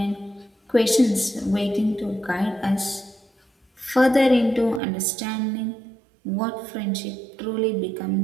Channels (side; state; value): left; drops out; at 4.8 s